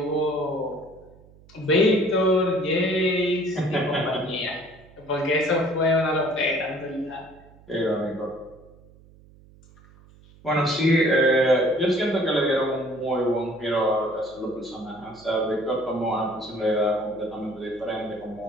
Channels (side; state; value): right; noise; hum, 25 dB below the sound